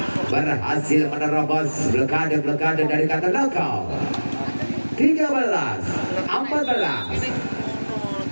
Berhasil menerobos blokade dari Katolakau.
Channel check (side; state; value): both; inverted; correlation -1.00